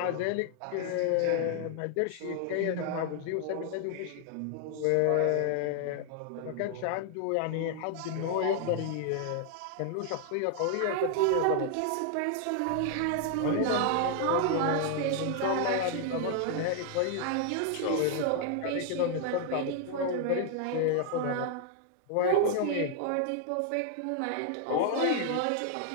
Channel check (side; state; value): both; different; correlation 0.00